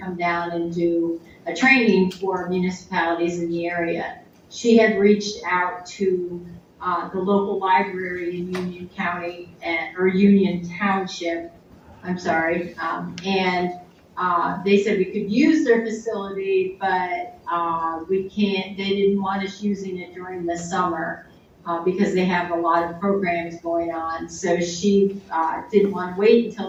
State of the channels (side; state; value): both; identical; correlation 1.00